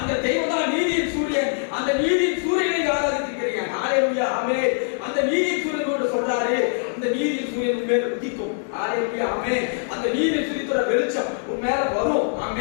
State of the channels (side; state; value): right; silent; 63 dB below the other